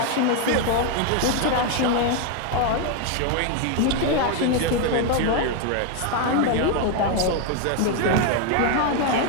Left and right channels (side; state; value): both; different; correlation 0.01